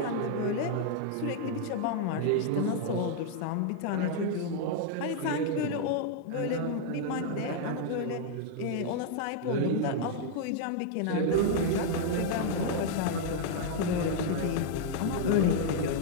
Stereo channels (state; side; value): different; both; correlation 0.00